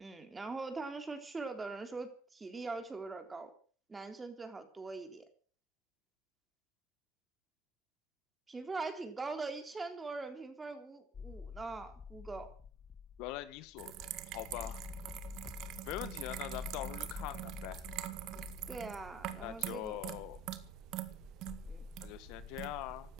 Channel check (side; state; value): both; normal; correlation 0.55